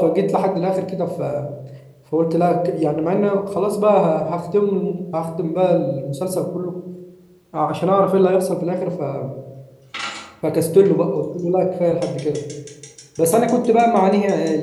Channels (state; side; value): identical; both; correlation 1.00